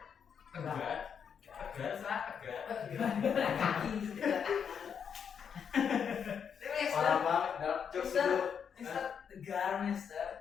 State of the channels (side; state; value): right; quieter; 7.3 dB